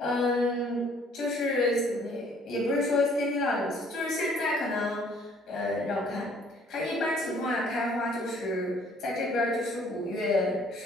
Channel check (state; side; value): normal; both; correlation 0.59